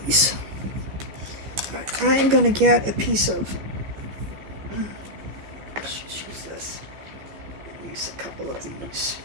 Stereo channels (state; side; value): late; left; 15 ms